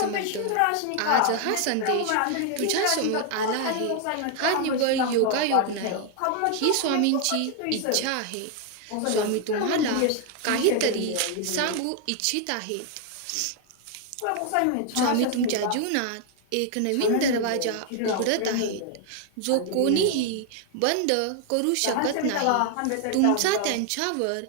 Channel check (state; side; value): different; both; correlation 0.00